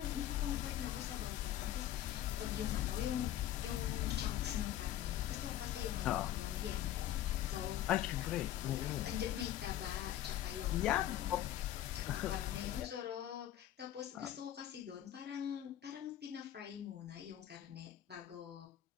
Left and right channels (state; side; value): quieter; right; 12.4 dB